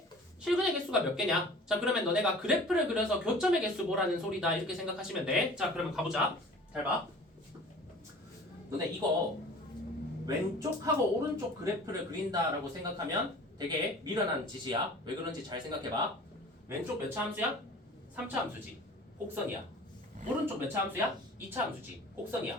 실근의 개수가 몇 개냐? 자, 그러면 너네가 그래프를 그려서 교점의 개수 보라는 소리다. 이렇게 생각하시면 돼. 자, 그러면 가보자. 잘 봐. 너네 이거 왼쪽하고 오른쪽 그래프를 그린다라고 생각하면 되게 미련한 짓이야. 왜 그런지 잘 생각해봐. 왼쪽 몇 차 함수야? 3차 함수지. 곡선이야. 오른쪽 몇 차 함수야? 2차 함수지.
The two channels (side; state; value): both; normal; correlation 0.44